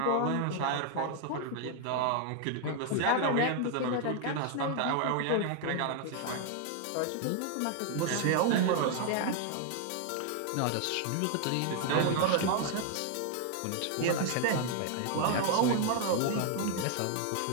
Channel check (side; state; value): both; different; correlation 0.00